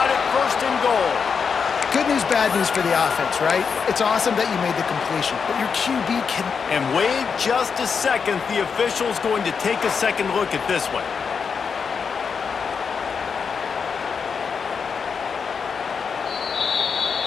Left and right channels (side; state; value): right; quieter; 6.0 dB